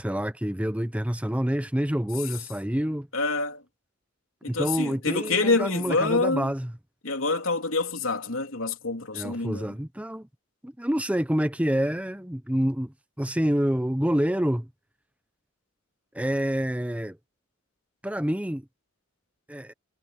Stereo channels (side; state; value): both; normal; correlation 0.57